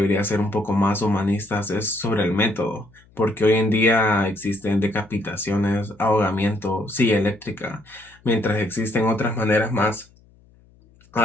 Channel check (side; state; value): left; noise; hum, 29 dB below the sound